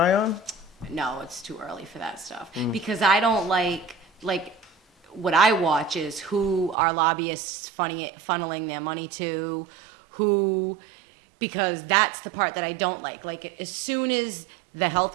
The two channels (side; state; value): left; drops out; at 6.8 s